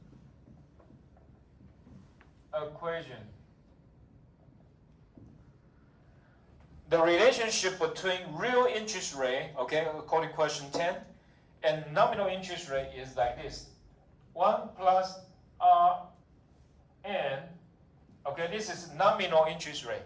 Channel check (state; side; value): identical; both; correlation 1.00